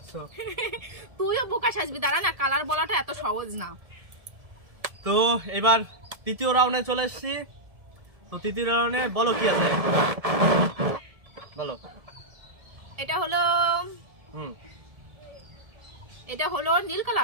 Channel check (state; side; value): late; left; 1.7 ms